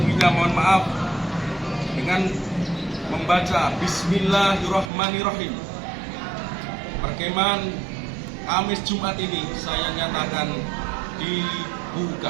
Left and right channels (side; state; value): left; drops out; at 4.9 s